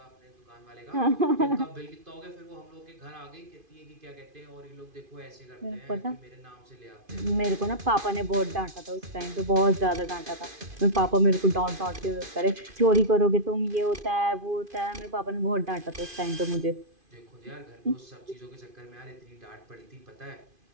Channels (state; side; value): late; left; 2.5 ms